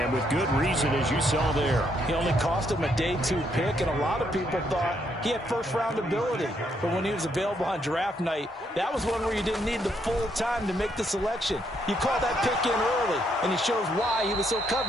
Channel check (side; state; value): both; normal; correlation 0.74